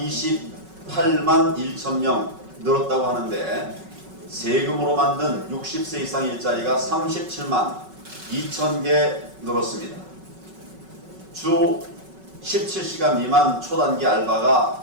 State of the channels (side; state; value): left; late; 5.3 ms